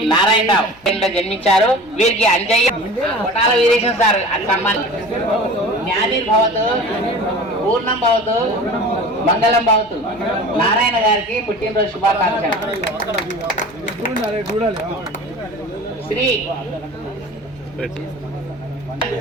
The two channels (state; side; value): noise; right; hum, 29 dB below the sound